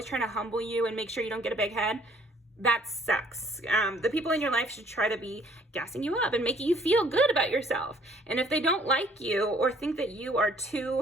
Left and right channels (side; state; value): both; normal; correlation 0.59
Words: trying to humble you and make sure you don't get a big head, that sucks. The people in your life should try to be gassing you up and making you feel good about yourself. And if they don't like you or think that you are